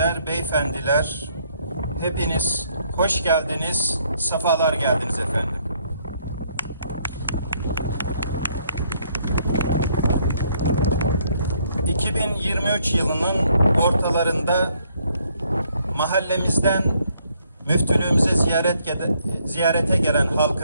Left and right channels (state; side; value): inverted; both; correlation -0.68